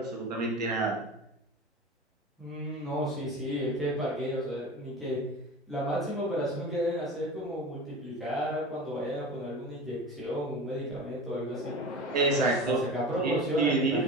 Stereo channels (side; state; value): both; normal; correlation 0.33